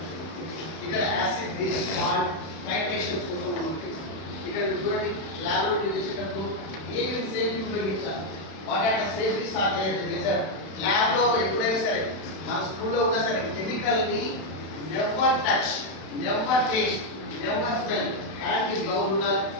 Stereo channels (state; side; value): late; right; 31 ms